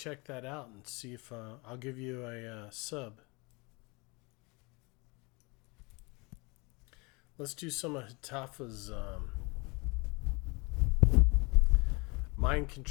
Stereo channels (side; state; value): right; quieter; 28.0 dB